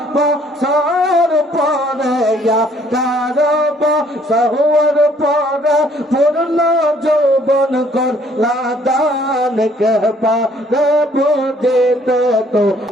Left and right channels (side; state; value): both; normal; correlation 0.62